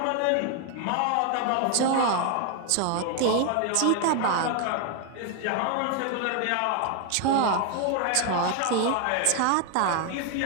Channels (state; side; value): different; both; correlation 0.01